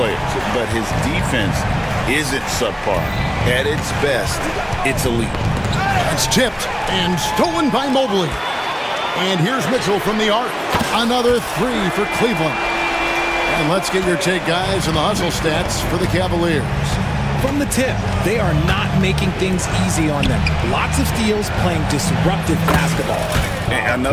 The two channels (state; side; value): identical; both; correlation 1.00